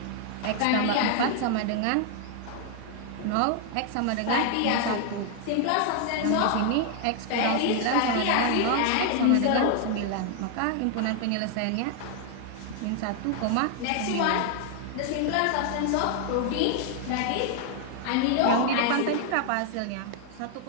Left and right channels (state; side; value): different; both; correlation 0.00